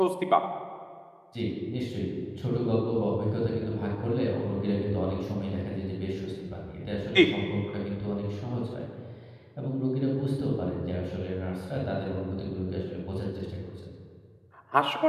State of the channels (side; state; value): both; identical; correlation 1.00